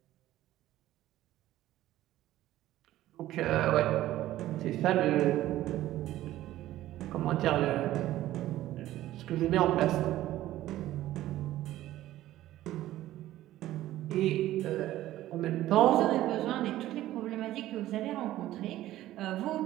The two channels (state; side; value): quieter; left; 14.6 dB